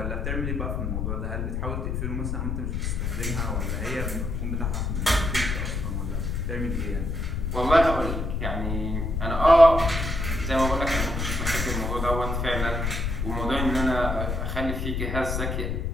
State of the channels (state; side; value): noise; left; rumble, 2 dB below the sound